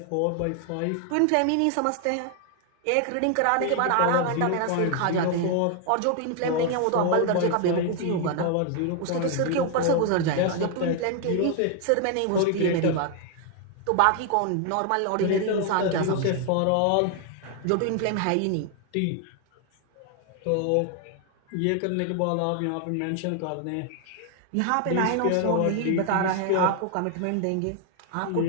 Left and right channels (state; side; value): different; both; correlation 0.00